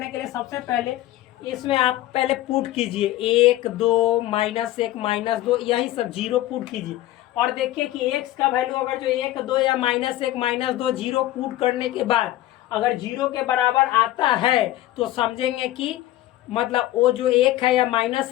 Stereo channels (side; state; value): right; quieter; 15.1 dB